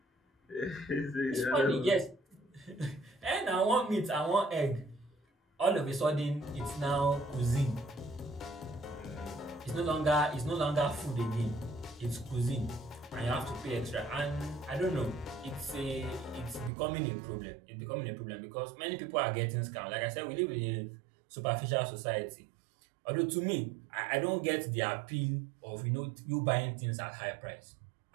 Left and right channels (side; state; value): left; drops out; at 16.7 s